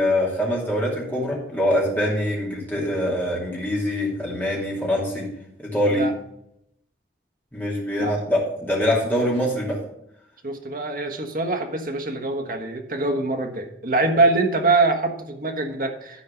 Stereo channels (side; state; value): both; normal; correlation 0.32